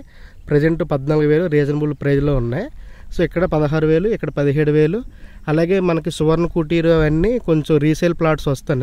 ప్రజెంట్ 14,000 రీజనబుల్ ప్రైజ్లో ఉన్నాయి. సో ఇక్కడ 16,000, ఇక్కడ 17,000. అలాగే మనకి సువర్ణ కుటీరు అవన్నీ కొంచెం రీసేల్ ప్లాట్స్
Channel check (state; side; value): identical; both; correlation 1.00